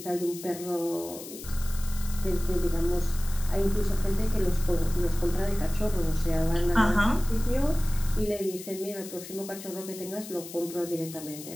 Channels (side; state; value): left; noise; hiss, 13 dB below the sound